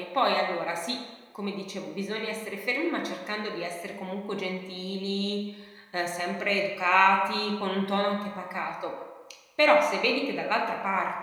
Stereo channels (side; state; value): both; identical; correlation 1.00